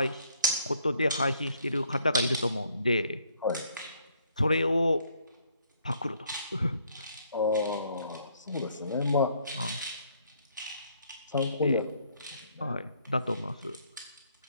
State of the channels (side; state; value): both; inverted; correlation -0.66